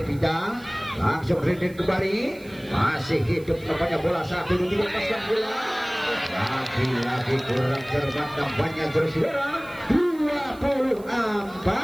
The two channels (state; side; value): noise; right; hiss, 24 dB below the sound